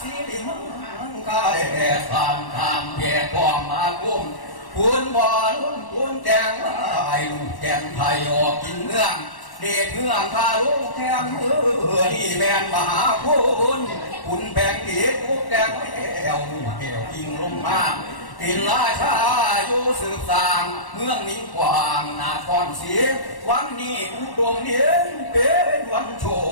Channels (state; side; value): late; right; 1.1 ms